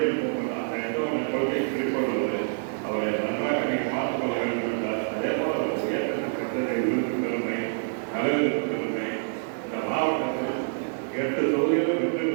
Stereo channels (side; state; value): left; silent; digital silence